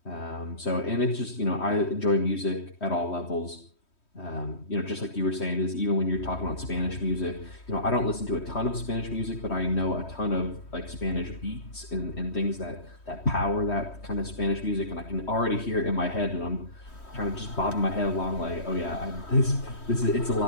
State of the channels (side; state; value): right; late; 3.1 ms